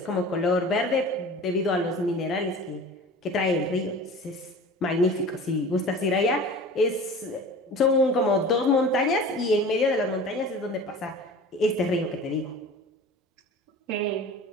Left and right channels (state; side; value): normal; both; correlation 0.39